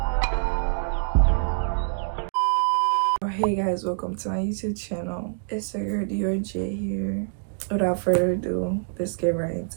my. Hey guys, welcome to my YouTube channel. It's your girl J here. Without further ado, let's get right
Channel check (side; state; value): left; silent; digital silence